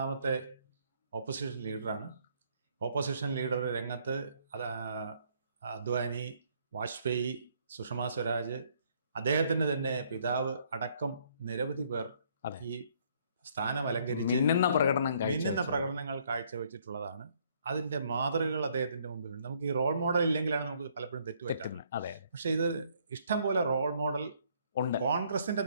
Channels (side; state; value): both; inverted; correlation -0.66